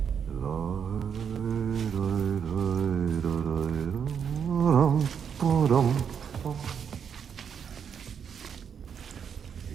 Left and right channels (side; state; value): left; quieter; 7.4 dB